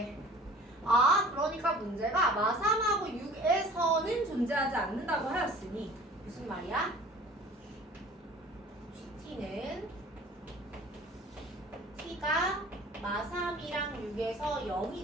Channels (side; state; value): both; normal; correlation 0.47